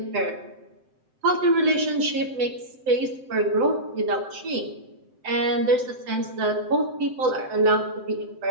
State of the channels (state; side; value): late; left; 7.8 ms